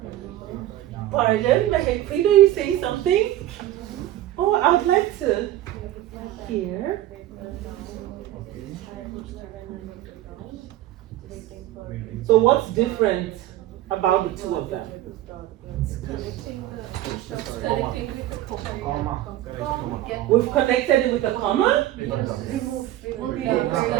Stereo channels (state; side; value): quieter; left; 14.1 dB